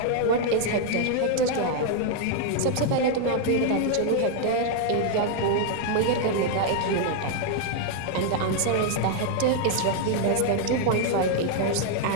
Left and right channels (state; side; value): different; both; correlation 0.00